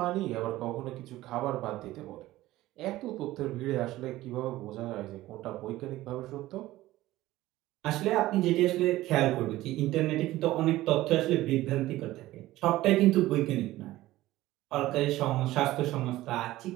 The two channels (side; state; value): left; quieter; 16.5 dB